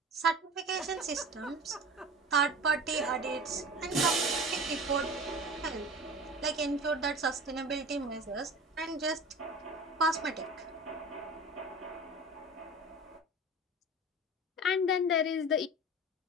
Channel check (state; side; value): normal; both; correlation 0.35